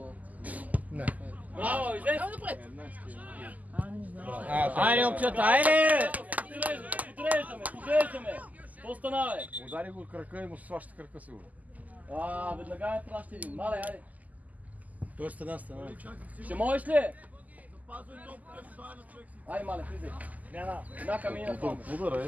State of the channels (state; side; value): late; left; 0.078 ms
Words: Не. Браво, излез! Айде, момчета, айде! Подреждаме! Какво стана, бе? Удари го от крака и му сваща крака сигурно. Веднага ме праща един. Мале, айде. Той е стена. Ще можеш ли? Айде, мале, влизай. Една камина в това. Удара е,